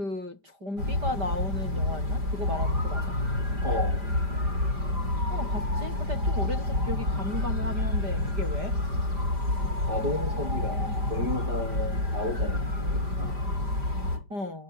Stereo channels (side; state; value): left; late; 5.0 ms